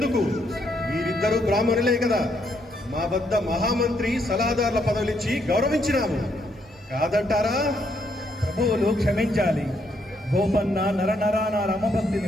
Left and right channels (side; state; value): both; normal; correlation 0.74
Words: మీరిద్దరూ బ్రాహ్మణులే కదా. మా వద్ద మహామంత్రి సలహాదారుల పదవులిచ్చి గౌరవించినాము. కాదంటారా? ప్రభువులు క్షమించాలి. గోపన్న నరనరాన రమభక్తి